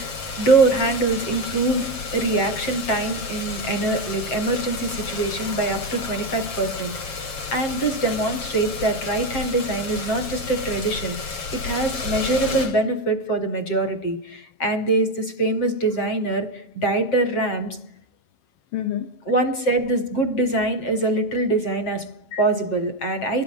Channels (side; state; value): right; late; 7.4 ms